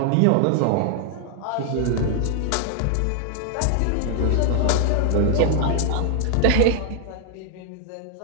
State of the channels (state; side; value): different; both; correlation 0.00